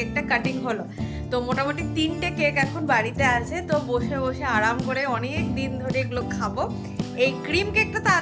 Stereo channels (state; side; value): identical; both; correlation 1.00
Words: কাটিং হলো। তো মোটামুটি 3টে কেক এখন বাড়িতে আছে, তো বসে বসে আরাম করে অনেক দিন ধরে এগুলো খাবো। এই ক্রিম কেকটা